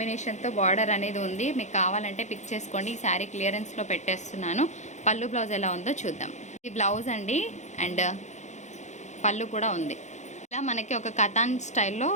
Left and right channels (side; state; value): right; late; 0.34 ms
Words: బార్డర్ అనేది ఉంది. మీకు కావాలంటే పిక్ చేసుకోండి. ఈ శారీ క్లియరెన్స్లో పెట్టేస్తున్నాను. పళ్ళు బ్లౌజ్ ఎలా ఉందో చూద్దాం. ఈ బ్లౌజ్ అండి అండ్ పళ్ళు కూడా ఉంది. ఇలా మనకి ఒక కథాన్ స్టైల్లో